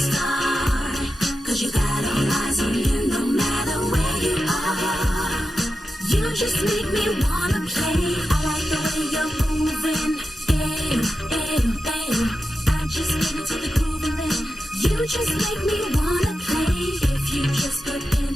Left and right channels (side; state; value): both; normal; correlation 0.90